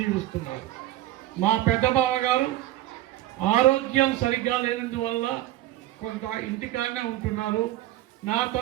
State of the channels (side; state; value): left; quieter; 14.8 dB